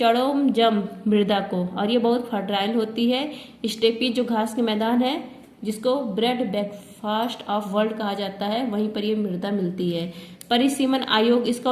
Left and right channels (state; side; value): identical; both; correlation 1.00